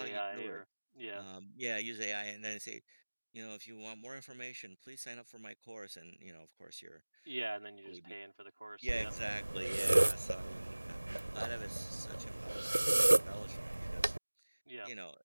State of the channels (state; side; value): inverted; both; correlation -1.00